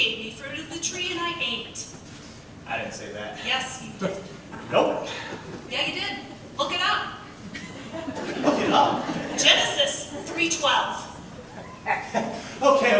me fruit of the tree and I ate. I didn't say that. Yes, you did. Nope. Yeah, you did. Look it up. Look it up. Genesis 3:12.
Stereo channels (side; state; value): both; identical; correlation 1.00